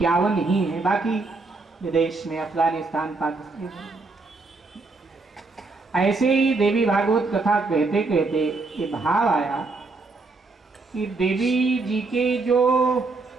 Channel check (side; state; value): left; quieter; 3.7 dB